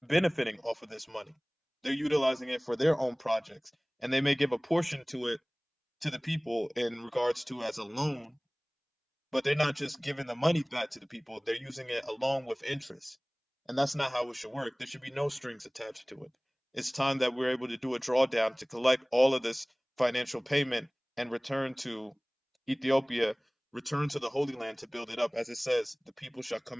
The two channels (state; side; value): identical; both; correlation 1.00